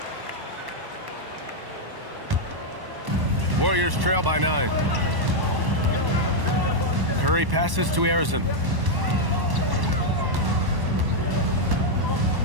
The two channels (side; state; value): left; late; 1.1 ms